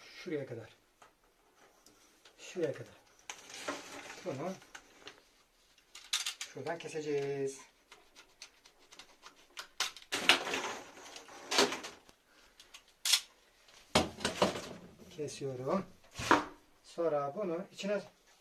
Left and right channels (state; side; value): identical; both; correlation 1.00